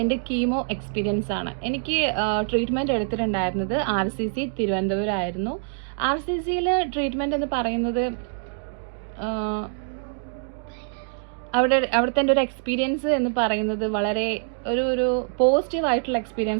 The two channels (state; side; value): silent; left; digital silence